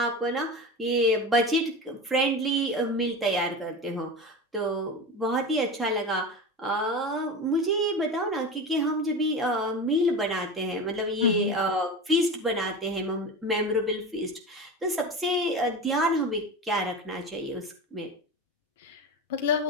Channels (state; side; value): normal; both; correlation 0.27